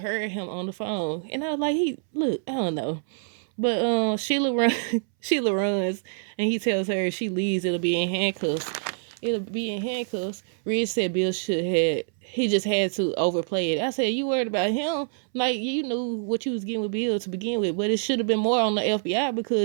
him on the phone. And I was like, I don't know. But Sheila runs, and he tells her if she leaves, it'll be in handcuffs. Ridge said Bill he just had to overplay it. I said, you worried about him? Like, you knew what you was getting with Bill to begin with, but it should have been more on the FBI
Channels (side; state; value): left; silent; 61 dB below the other